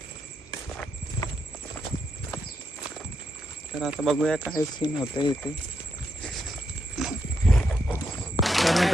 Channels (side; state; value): both; normal; correlation 0.82